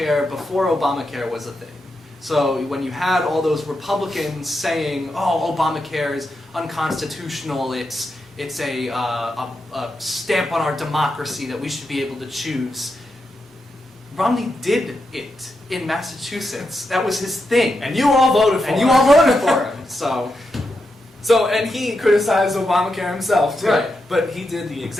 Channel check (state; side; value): normal; both; correlation 0.86